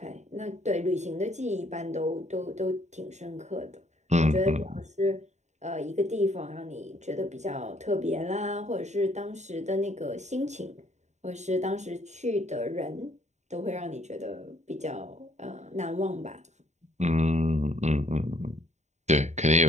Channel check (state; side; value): late; left; 0.34 ms